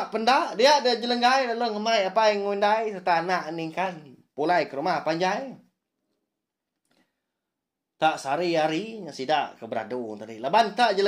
pendak dia ada jelenggai lalu ngemai apa yang ngundai serta anak ningkan pulai ke rumah panjai. Tak sari-hari sidak ke beradu tadi. Laban tak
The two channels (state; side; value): identical; both; correlation 1.00